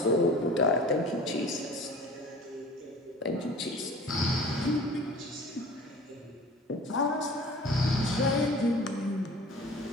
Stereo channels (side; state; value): both; normal; correlation 0.43